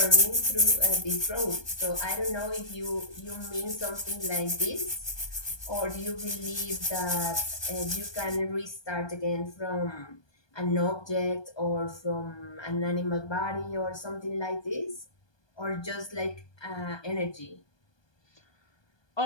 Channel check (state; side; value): late; right; 1.2 ms